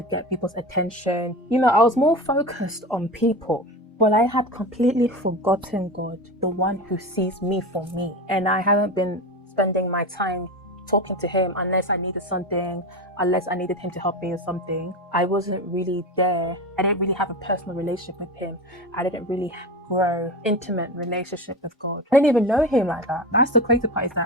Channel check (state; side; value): normal; both; correlation 0.25